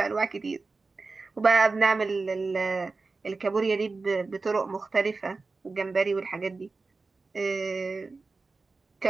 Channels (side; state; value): left; quieter; 3.9 dB